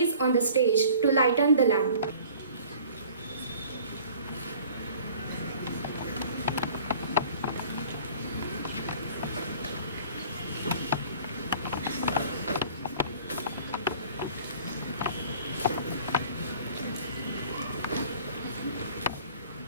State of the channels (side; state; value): both; inverted; correlation -0.49